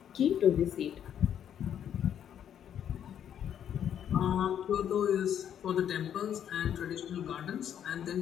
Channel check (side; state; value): right; quieter; 9.5 dB